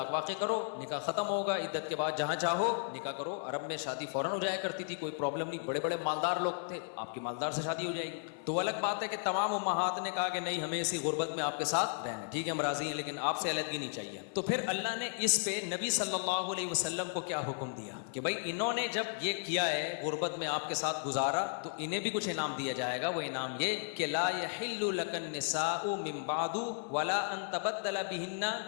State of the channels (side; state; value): right; silent; 55 dB below the other